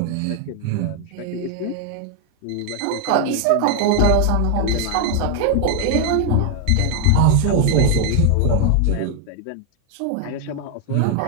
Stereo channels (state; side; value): different; both; correlation 0.00